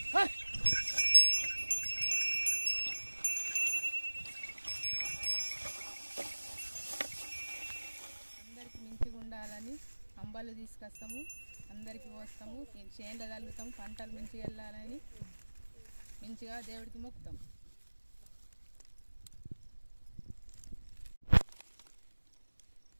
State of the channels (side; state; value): both; inverted; correlation -1.00